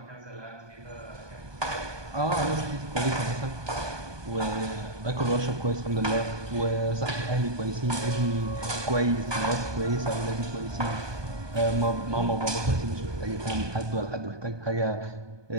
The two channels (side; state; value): left; late; 1.2 ms